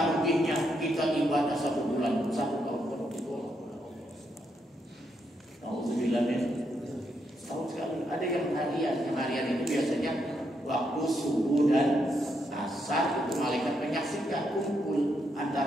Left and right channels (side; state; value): both; normal; correlation 0.79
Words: ruginya kita ibadah 1 bulan, 1 tahun penuh ditolak oleh Allah. Alhamdulillah ya. Tahun sekali ada yang harian itu biasanya waktu subuh dan asar itu malaikat menyaksikan kumpul